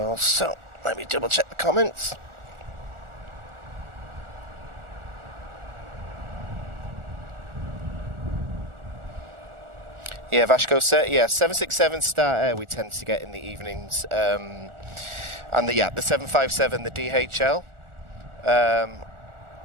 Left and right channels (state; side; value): late; left; 1.4 ms